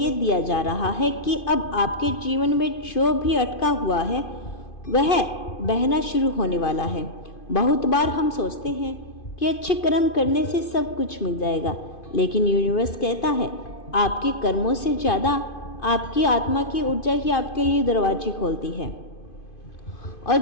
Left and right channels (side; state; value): right; late; 2.5 ms